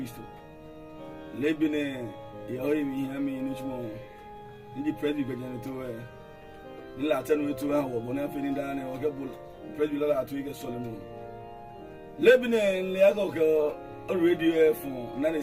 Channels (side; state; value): both; identical; correlation 1.00